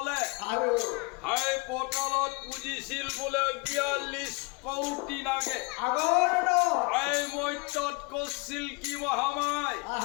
হাই পটলত পুজিছিল বোলে ৪২ কৌটি নাগে এই মৈত্যত কৰিছিল কি মহামায়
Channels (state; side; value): quieter; right; 28.7 dB